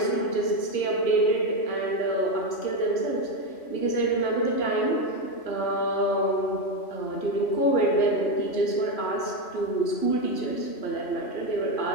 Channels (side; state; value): right; late; 3.1 ms